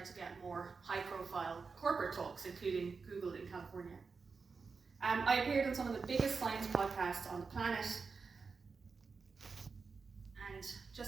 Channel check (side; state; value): left; quieter; 4.9 dB